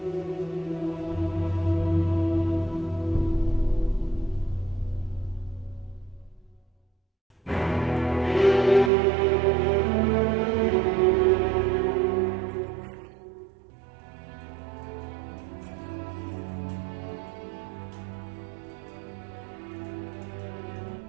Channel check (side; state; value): left; drops out; at 8.9 s